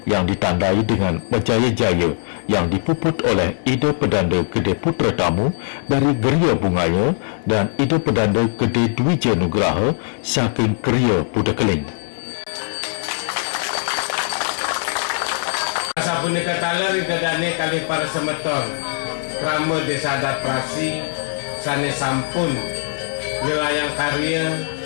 yang ditandai dengan berjaya-jaya yang dipuput oleh Ida Pedanda Gede Putra Tamu dari Geria Bungaya dan Ida Pedanda Gede Dwija Nugraha saking Geria Pudakeling. Sapunika taler idadane kali para semeton krama Desa Adat Perasi sane sampun nyelayang karya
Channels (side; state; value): right; silent; digital silence